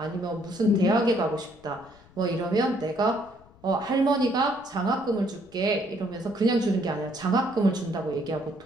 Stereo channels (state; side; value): noise; left; rumble, 25 dB below the sound